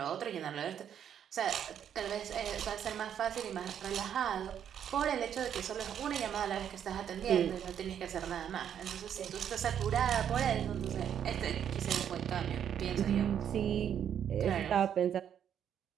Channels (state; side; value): quieter; left; 9.1 dB